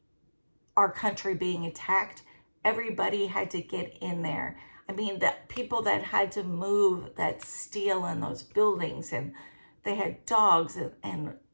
our country being attacked. Everybody had to get in there. I mean, the people that had to move that steel in those buildings, and they had dogs and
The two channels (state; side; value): inverted; both; correlation -1.00